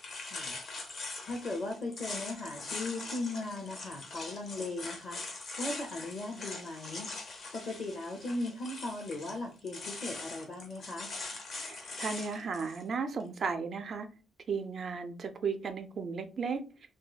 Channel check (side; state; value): both; normal; correlation 0.74